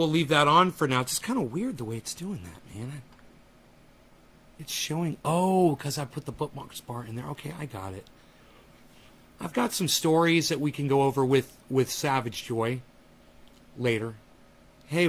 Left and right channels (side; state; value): both; identical; correlation 1.00